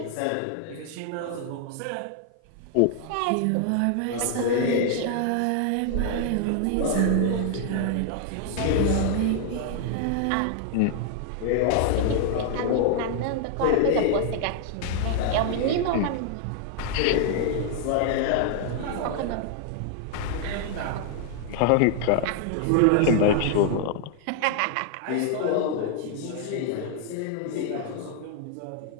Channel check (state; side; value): different; both; correlation 0.00